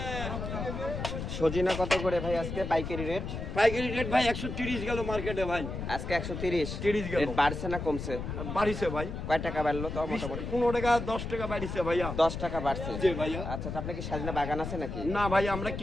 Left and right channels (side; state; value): left; noise; rumble, 5 dB below the sound